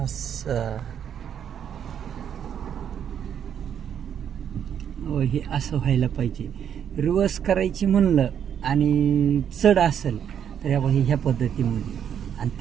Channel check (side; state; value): left; quieter; 8.7 dB